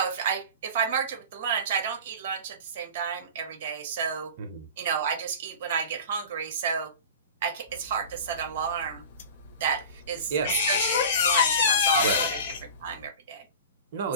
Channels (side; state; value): both; inverted; correlation -0.35